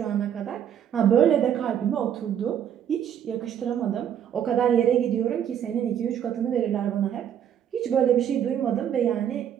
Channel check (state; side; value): quieter; left; 9.4 dB